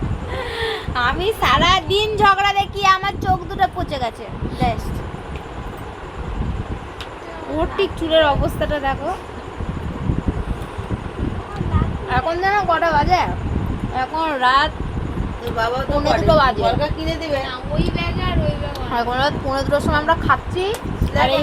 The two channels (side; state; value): both; identical; correlation 1.00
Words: আমি সারা দিন ঝগড়া দেখি, আমার চোখ দুটো পচে গেছে। ওর ঠিক চুলের অবস্থাটা দেখো। এখন যেন কটা বাজে? এখন রাত বাবা তো 2:30 বাজে। বলকা কিনে দিবে ওই ব্যাগ আর ওই ব্যাগ। এখন রাত 2:30 সময় আমরা খাচ্ছি, আর